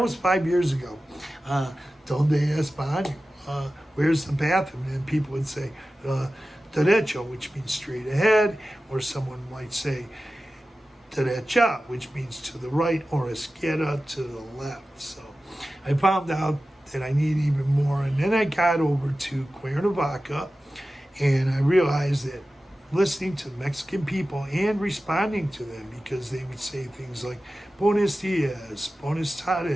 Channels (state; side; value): normal; both; correlation 0.95